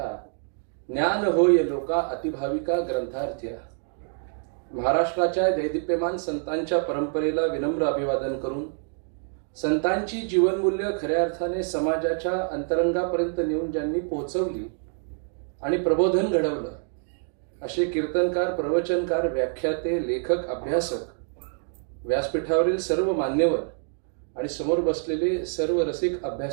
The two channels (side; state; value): left; silent; 58 dB below the other